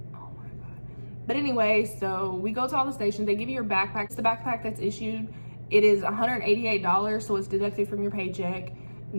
Oh my God. But anyway, so we go to all the stations. They give you your backpack. It's the backpack that's issued. It is $188, so it's deducted from your paycheck.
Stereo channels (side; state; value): both; inverted; correlation -1.00